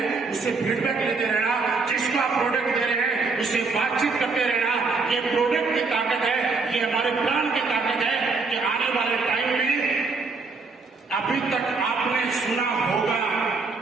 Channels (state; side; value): quieter; left; 4.2 dB